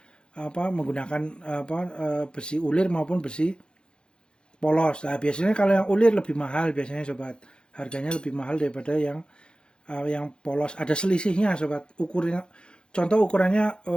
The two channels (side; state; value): right; late; 0.051 ms